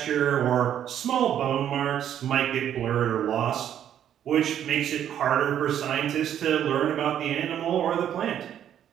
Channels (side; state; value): left; quieter; 10.1 dB